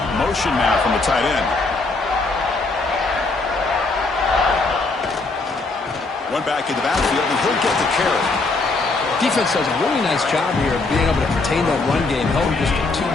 Motion now from the tight end. One back in the backfield, and he'll get the carry. Defense does a really nice job here of being able to contain that run game, held him just to 2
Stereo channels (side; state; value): right; quieter; 3.5 dB